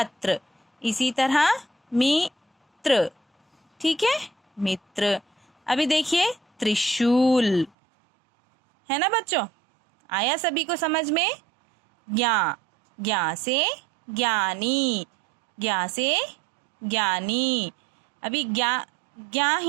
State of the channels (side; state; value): left; drops out; at 7.7 s